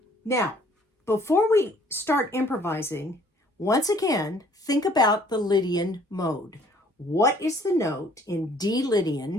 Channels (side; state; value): both; normal; correlation 0.59